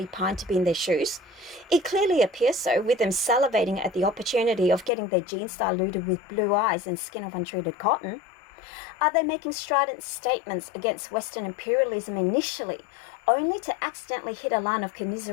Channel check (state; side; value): drops out; right; at 4.9 s